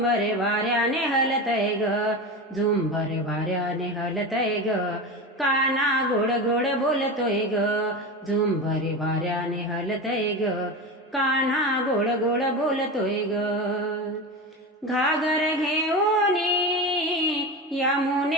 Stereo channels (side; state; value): both; normal; correlation 0.24